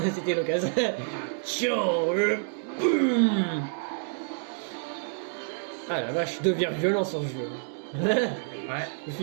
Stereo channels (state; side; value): silent; left; digital silence